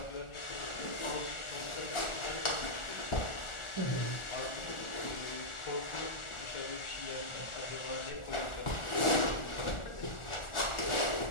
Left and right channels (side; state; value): right; late; 1.4 ms